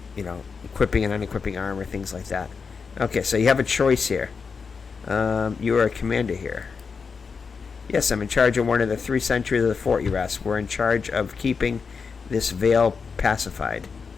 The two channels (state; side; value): quieter; right; 5.4 dB